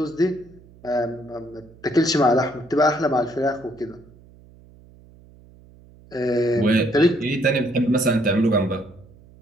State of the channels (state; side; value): noise; right; hum, 25 dB below the sound